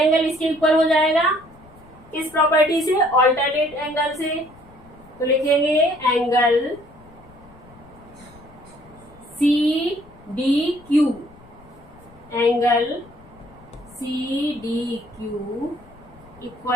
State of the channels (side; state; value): left; noise; rumble, 24 dB below the sound